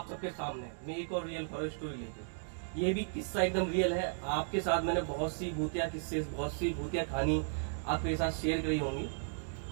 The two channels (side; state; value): left; silent; digital silence